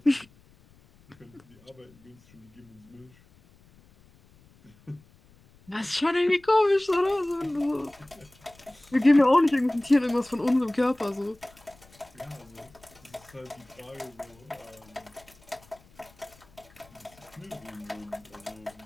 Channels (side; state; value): left; noise; rumble, 28 dB below the sound